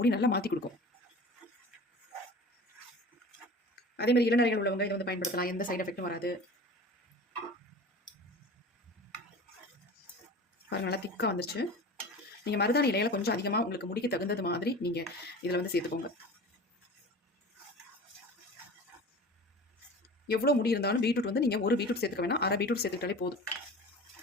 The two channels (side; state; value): both; normal; correlation 0.37